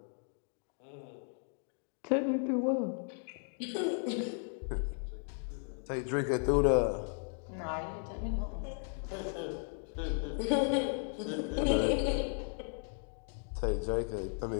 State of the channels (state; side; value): silent; right; 54 dB below the other